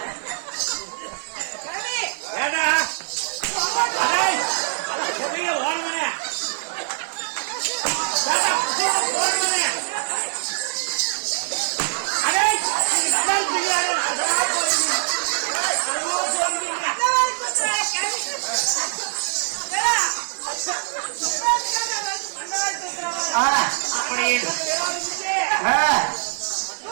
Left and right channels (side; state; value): left; silent; 63 dB below the other